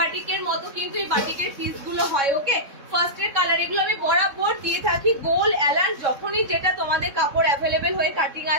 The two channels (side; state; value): left; late; 3.6 ms